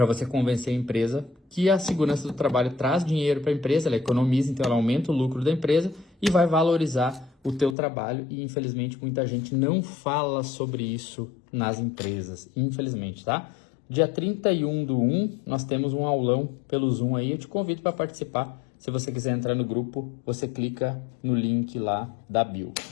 você convencer a empresa que a segurança do trabalho traz dinheiro para a empresa, ela economiza, então ela aumenta o lucro da empresa e vai valorizar o teu trabalho. E infelizmente muita gente não fala sobre isso nas empresas, infelizmente, tá? Dia 31/1 nós temos um aulão pelo Zoom aí, eu te convido para participar. Se você quiser entrar no grupo, você clica no link lá da bio,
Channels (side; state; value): right; drops out; at 7.8 s